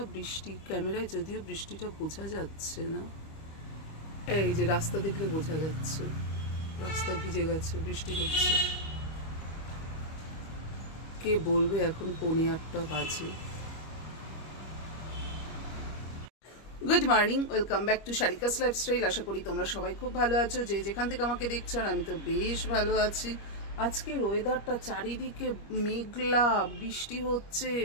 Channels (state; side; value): late; right; 25 ms